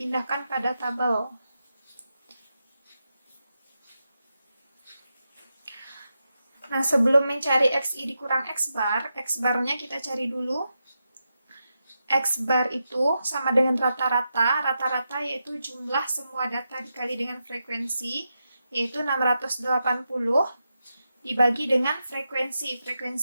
pada tabel. Nah, sebelum mencari XI dikurang X bar-nya kita cari dulu. X bar itu sama dengan rata-rata. Rata-rata yaitu jumlah semua data dikali dengan frekuensi, yaitu 680 dibagi dengan frekuensi.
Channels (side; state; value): both; inverted; correlation -0.87